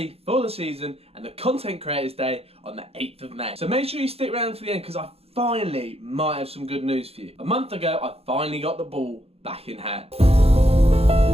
for the season and the Content Creators Day on the 8th of May. So make sure you stick around for the end because I finally might have some good news for you. A month ago, I finally got the ball back in hand.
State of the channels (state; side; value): late; left; 0.29 ms